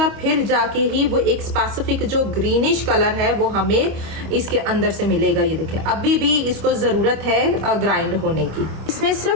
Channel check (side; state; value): left; late; 25 ms